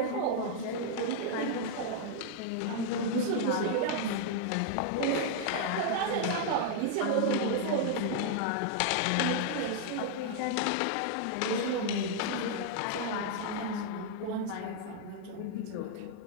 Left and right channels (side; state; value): both; different; correlation -0.01